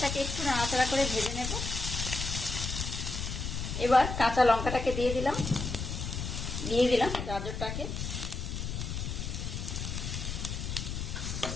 একটু নাড়াচাড়া করে ভেজে নেব। এবার কাঁচা লঙ্কাটাকে দিয়ে দিলাম গাজরটাকে।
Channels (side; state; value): left; noise; rumble, 4 dB below the sound